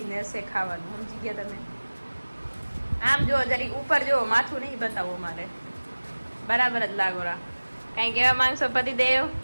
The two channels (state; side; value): inverted; both; correlation -1.00